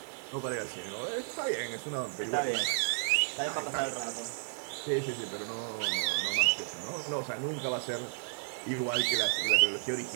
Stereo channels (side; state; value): left; silent; digital silence